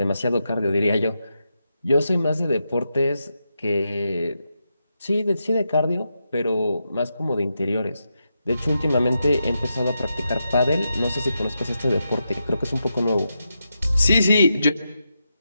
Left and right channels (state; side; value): inverted; both; correlation -0.86